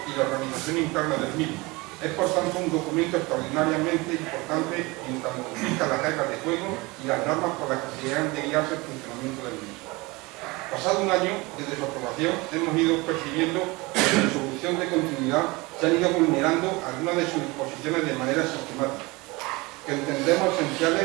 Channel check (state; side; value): quieter; left; 24.0 dB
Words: y la organización interna del mismo. Es por tanto un documento extraordinariamente importante en tanto fija las reglas de juego y las normas por las que se han de guiarse el funcionamiento del mismo. Pasado un año desde su aprobación, hemos ido percibiendo que en su solución de continuidad se han ido vulnerando algunas de sus disposiciones de manera sistemática, que entendemos